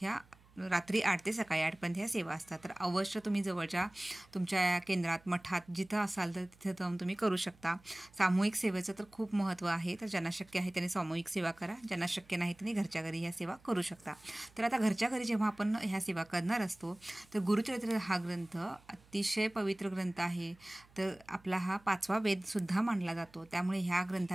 रात्री 8 ते सकाळी 8 पर्यंत ह्या सेवा असतात। तर अवश्य तुम्ही जवळच्या तुमच्या केंद्रात, मठात जिथं असाल तर तिथं जाऊन तुम्ही करू शकता। सामूहिक सेवेचं तर खूप महत्त्व आहे। तर ज्यांना शक्य आहे त्यांनी सामूहिक सेवा करा, ज्यांना शक्य नाही त्यांनी घरच्या घरी ह्या सेवा करू शकता। तर आता घरच्या घरी जेव्हा आपण ह्या सेवा करणार असतो तर गुरुचरित्र हा ग्रंथ अतिशय पवित्र ग्रंथ आहे। तर आपला हा 5वा वेदसुद्धा मानला जातो, त्यामुळे ह्या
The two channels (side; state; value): right; noise; hum, 28 dB below the sound